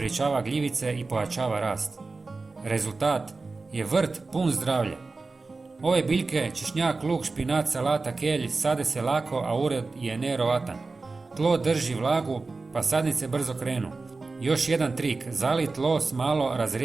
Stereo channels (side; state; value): left; quieter; 3.8 dB